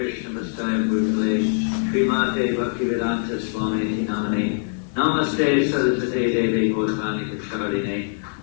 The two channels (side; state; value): right; silent; digital silence